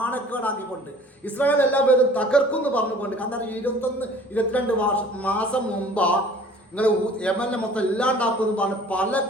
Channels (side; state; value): both; normal; correlation 0.49